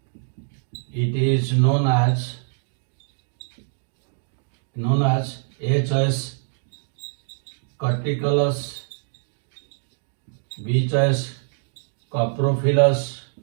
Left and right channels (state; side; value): silent; left; digital silence